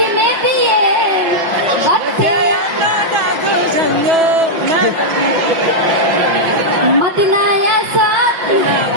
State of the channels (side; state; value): left; late; 5.8 ms